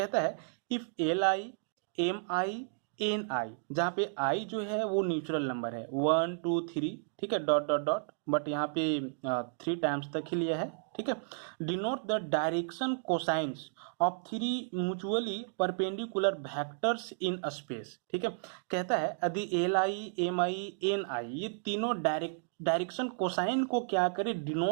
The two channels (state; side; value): silent; left; digital silence